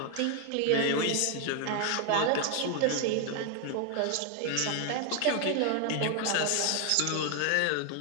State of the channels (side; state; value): both; different; correlation 0.00